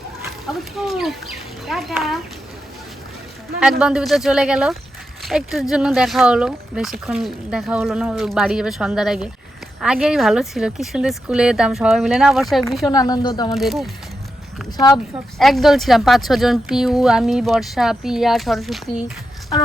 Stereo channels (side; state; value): both; normal; correlation 0.87